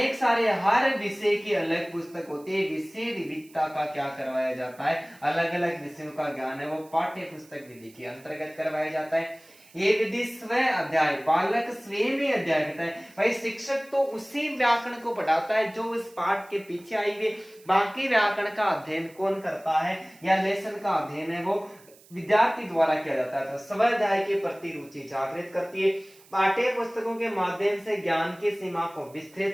सारे हर विषय की अलग पुस्तक होती है, विषय विविधता का क्या करवाया जाता है, अलग अलग विषयों का ज्ञान है वो पाठ्य पुस्तक विधि के अंतर्गत करवाया जाता है। ये विधि स्व अध्याय, बालक स्वयं ही अध्याय करता है। भाई शिक्षक तो उसी व्याकरण को पढ़ाता है जो इस पाठ के पीछे आई हुई, बाकी व्याकरण का अध्ययन कौन करता है या लेसन का अध्ययन है वो विद्यार्थी द्वारा किया जाता है। तो स्व अध्याय के प्रति रुचि जागृत करती है। पाठ्य पुस्तकों के माध्यम से ज्ञान की सीमा को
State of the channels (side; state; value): right; noise; hiss, 26 dB below the sound